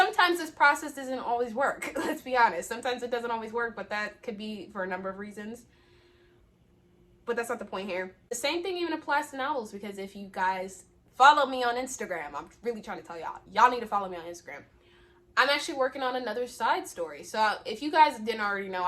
this process doesn't always work. Let's be honest. Sometimes it doesn't always work, but that could be for a number of reasons. But that's not the point here. The same thing even applies to novels, because if you guys follow me on Instagram, I'm really trying to tell y'all need to follow me on Instagram. I'm actually working on another side story. So if you guys didn't already know,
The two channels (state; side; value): identical; both; correlation 1.00